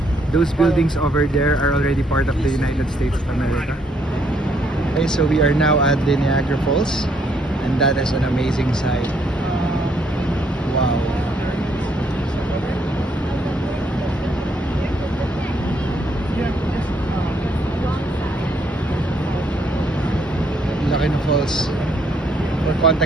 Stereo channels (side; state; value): both; normal; correlation 0.71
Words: those buildings over there are already part of the United States of America. Okay, so we are now at the Niagara Falls, and that is an amazing sight. Wow. Laki ng falls. For